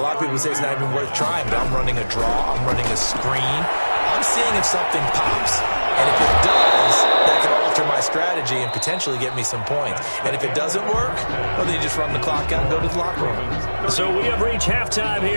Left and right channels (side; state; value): both; inverted; correlation -1.00